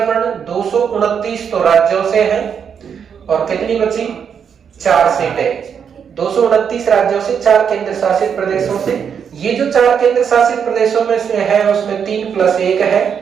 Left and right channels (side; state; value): left; quieter; 7.3 dB